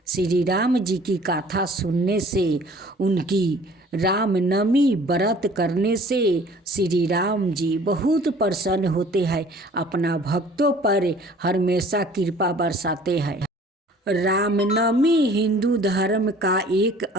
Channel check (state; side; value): normal; both; correlation 0.51